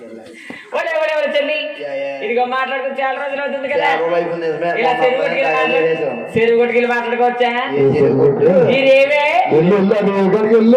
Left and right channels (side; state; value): both; identical; correlation 1.00